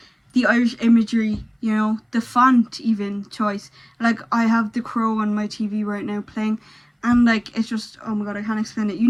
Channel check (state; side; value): identical; both; correlation 1.00